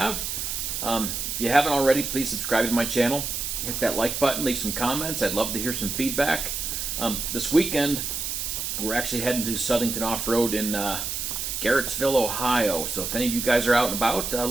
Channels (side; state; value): right; noise; hiss, 3 dB below the sound